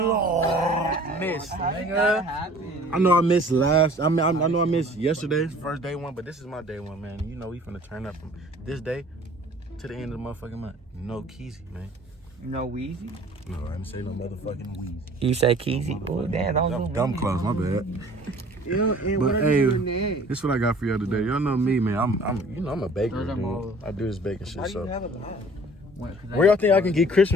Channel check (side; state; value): both; normal; correlation 0.50